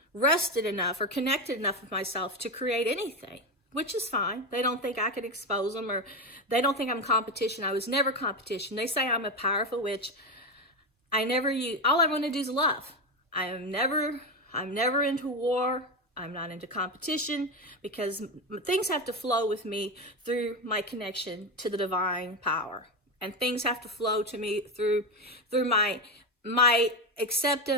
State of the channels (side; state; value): both; normal; correlation 0.14